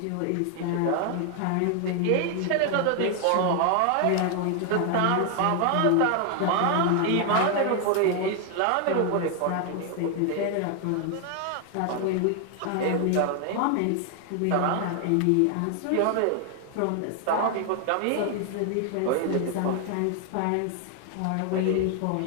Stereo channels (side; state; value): both; different; correlation 0.00